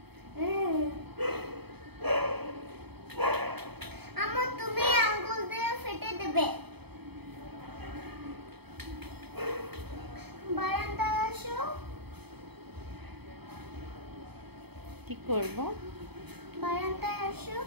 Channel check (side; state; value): left; late; 0.98 ms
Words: আমার তুমি আঙ্গুল দিয়ে ফেটে দেবে। বারান্দায় আসো। কি করবো? বারান্দায় আসো।